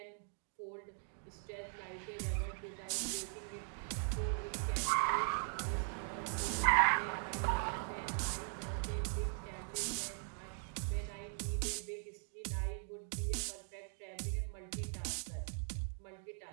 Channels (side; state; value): left; silent; 51 dB below the other